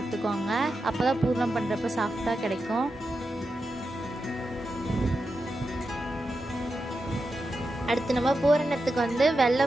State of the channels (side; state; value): both; normal; correlation 0.89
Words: அப்போ தான் பூர்ணம் பண்ணுறப்ப சாஃப்டாக கிடைக்கும். அடுத்து நம்ம பூரணத்துக்கு